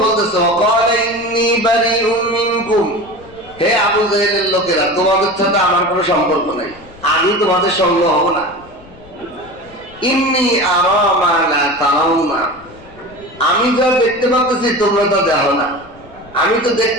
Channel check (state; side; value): noise; left; rumble, 23 dB below the sound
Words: বলতেছে ওয়াকালা ইন্নী বারিউম মিনকুম, হে আবু জাহেলের লোকেরা, তোমাদের সাথে আমার কোনো সম্পর্ক নাই, আমি তোমাদের সঙ্গ হব না। ইন্নী আরা মা লা তারাউনা, আমি যা দেখতে পাচ্ছি তোমরা তা দেখো না। আমি তো